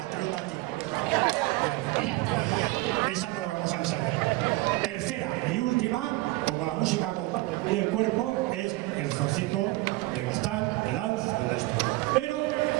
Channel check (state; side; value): quieter; left; 20.6 dB